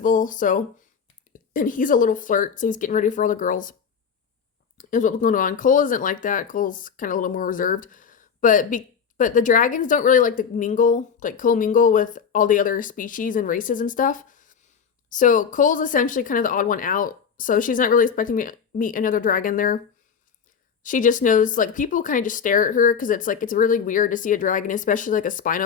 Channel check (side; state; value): right; quieter; 6.7 dB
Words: So, and he's a little flirt, so he's getting ready for all the girls is what's going on. Cole isn't like that. Cole's kind of a little more reserved, but the dragons don't really like to mingle, like co-mingle with all the other species and races and stuff. So Cole's essentially kind of the odd one out. So she's not really expecting me to meet another dragon there. She just knows, like, people kind of just stare at her because it's like it's really weird to see a dragon, especially like a